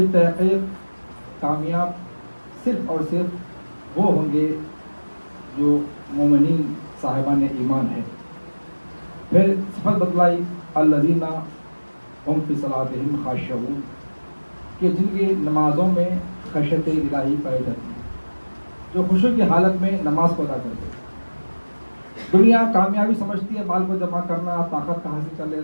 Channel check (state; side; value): inverted; both; correlation -1.00